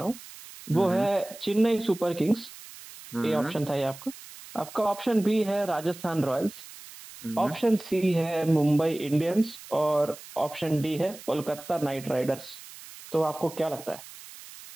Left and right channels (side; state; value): right; noise; hiss, 17 dB below the sound